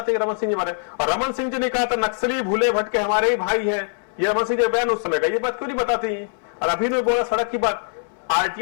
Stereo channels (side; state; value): right; silent; 64 dB below the other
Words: कि रमन सिंह जी हमारे, और रमन सिंह जी ने कहा था नक्सली भूले भटके हमारे ही भाई हैं, ये रमन सिंह जी बयान उस समय का, ये बात क्यों नहीं बताती? और अभी ने बोला सड़क की बात,